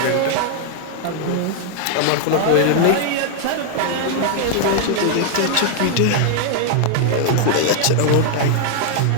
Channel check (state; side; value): different; both; correlation 0.00